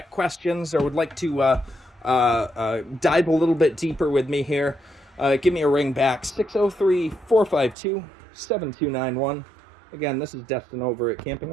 questions or would like to dive a little bit deeper with me here, give me a ring back, 603-452-7291. Again, this is Destin over at Camping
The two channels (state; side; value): drops out; left; at 7.8 s